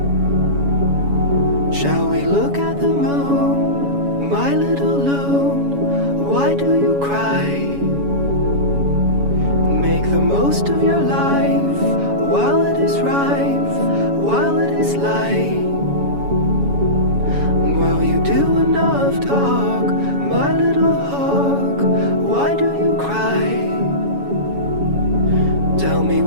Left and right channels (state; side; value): late; left; 7.1 ms